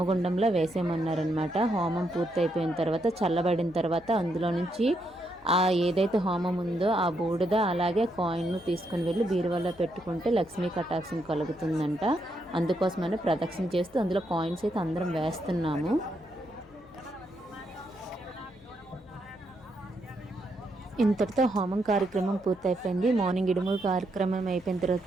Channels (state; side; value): noise; left; hum, 27 dB below the sound